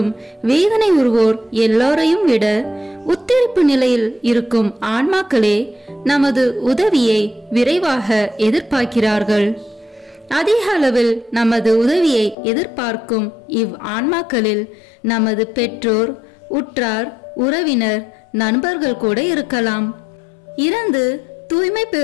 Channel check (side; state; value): right; drops out; at 12.4 s